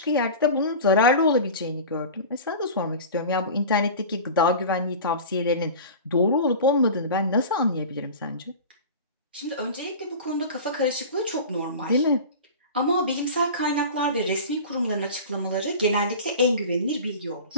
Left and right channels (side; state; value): both; inverted; correlation -0.34